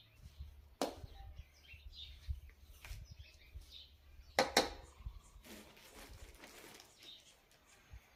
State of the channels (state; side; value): identical; both; correlation 1.00